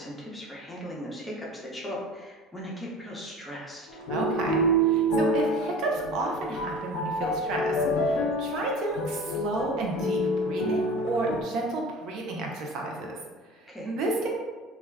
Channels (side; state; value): both; normal; correlation 0.39